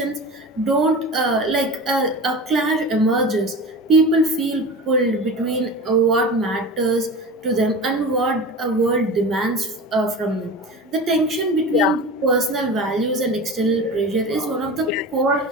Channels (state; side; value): normal; both; correlation 0.31